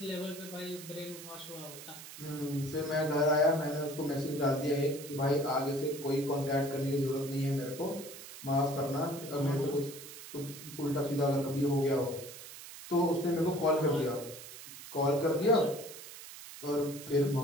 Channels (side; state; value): right; noise; hiss, 14 dB below the sound